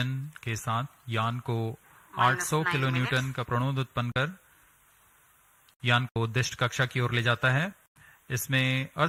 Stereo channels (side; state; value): both; identical; correlation 1.00